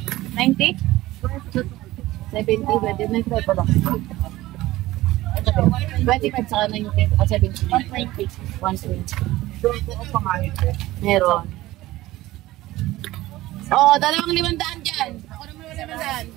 90? 70, 25 pala. 25 saka 90, 70. 120. Meron. Oh, dalawang 500 dyan. Ako naman 500.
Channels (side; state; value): left; quieter; 17.1 dB